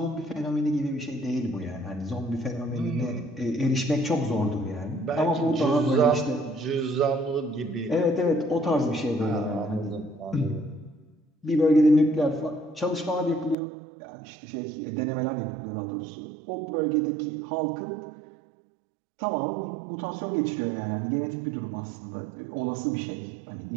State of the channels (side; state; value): left; drops out; at 13.6 s